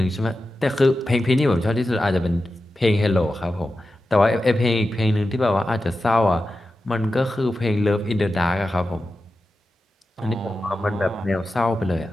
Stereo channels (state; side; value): normal; both; correlation 0.92